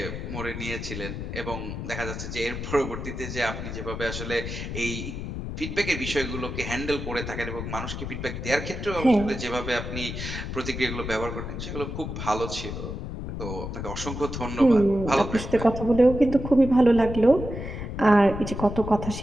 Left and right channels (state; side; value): noise; left; rumble, 6 dB below the sound